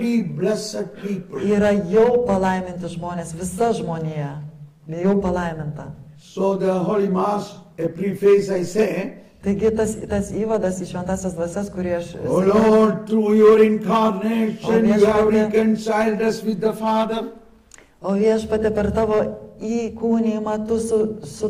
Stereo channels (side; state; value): both; identical; correlation 1.00